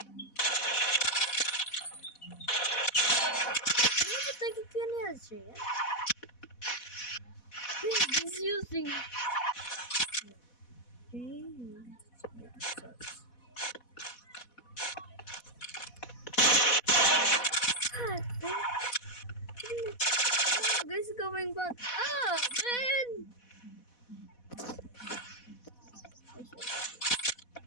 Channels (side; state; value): right; late; 4.1 ms